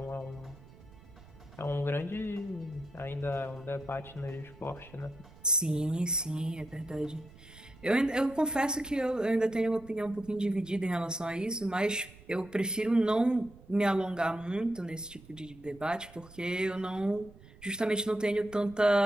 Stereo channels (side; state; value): right; noise; rumble, 21 dB below the sound